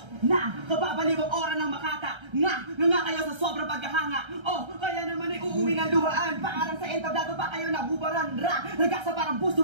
Na, kababalibang ora ng makata. Nga kayo sa sobrang paghahanga. Oh, kaya naman ay uuwi ng luhaan. Paarang sa entablado pa kayo nabubaran. Ragasa parang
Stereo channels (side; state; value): left; late; 1.3 ms